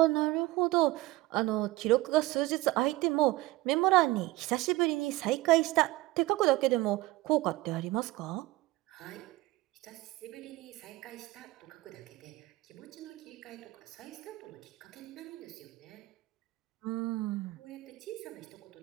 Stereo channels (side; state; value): left; quieter; 18.8 dB